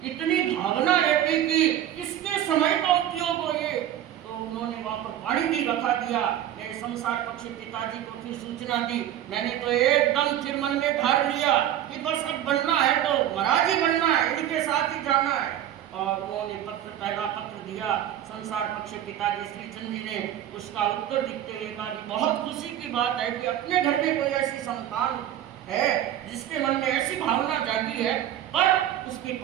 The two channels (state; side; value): quieter; left; 11.5 dB